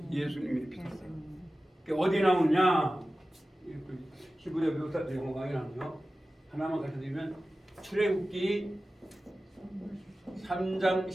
예수님이 비동사예요. 어디 나오냐? 히브리어 묘사 영어 강의 나오죠. 하나만 가르쳐드리면 출애굽기 3장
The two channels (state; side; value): normal; both; correlation 0.95